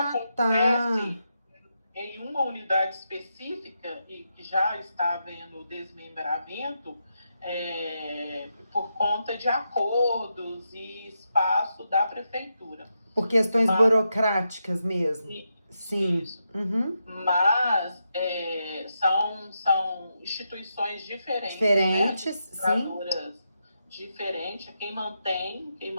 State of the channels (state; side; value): inverted; both; correlation -0.85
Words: acontece em uma unidade específica e que já está havendo desmembramento por conta de acordos e espaço da prefeitura. Por questões burocráticas mesmo. Sim. Isso. Uhum. Mas são instituições diferentes, Sim. Diferentes. Quem mantém